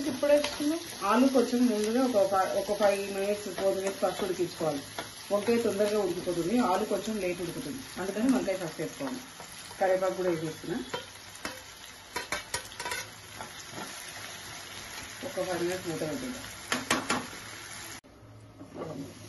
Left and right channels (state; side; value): identical; both; correlation 1.00